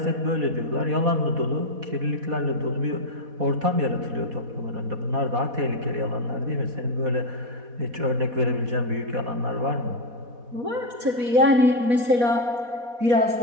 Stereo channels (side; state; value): left; late; 4.1 ms